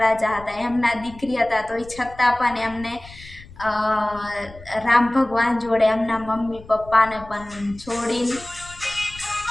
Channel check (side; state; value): left; noise; rumble, 19 dB below the sound